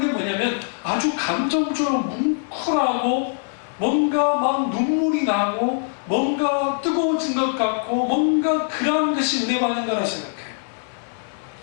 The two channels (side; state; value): right; silent; 64 dB below the other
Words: 게 뭐냐면 아주 감정적으로 뭉클하고 뭔가 막 눈물이 나고 뭔가 뜨거워진 것 같고 뭔가 그런 것이 은혜 받는 거라 생각해요.